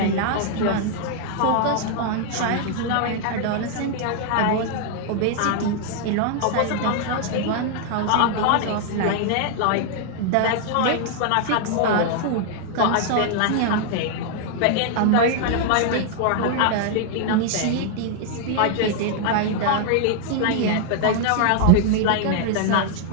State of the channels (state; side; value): different; both; correlation 0.00